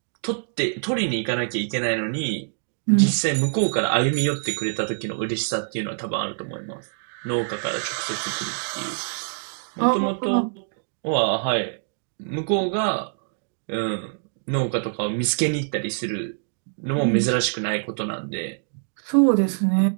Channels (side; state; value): left; silent; digital silence